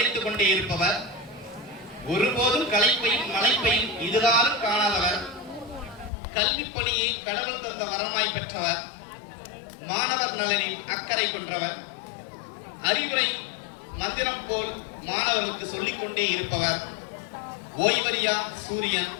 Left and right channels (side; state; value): right; drops out; at 6.1 s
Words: கொண்டே இருப்பவர், ஒருபோதும் களைப்பையும் மலைப்பையும் இதுகாலும் காணாதவர், கல்வி பணியை கடவுள் தந்த வரமாய் பெற்றவர், மாணவர் நலனில் அக்கறை கொண்டவர், அறிவுரை மந்திரம் போல் மாணவர்களுக்கு சொல்லிக் கொண்டே இருப்பவர், ஓய்வறியா சூரியன்,